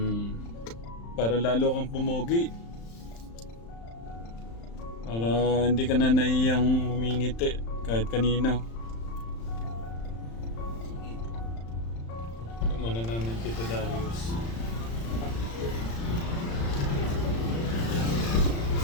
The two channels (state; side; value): late; right; 35 ms